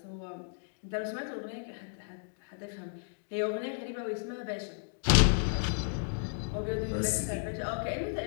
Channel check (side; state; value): right; silent; digital silence